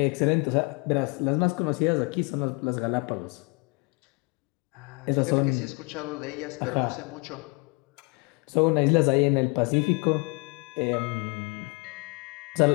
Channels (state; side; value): quieter; right; 30.3 dB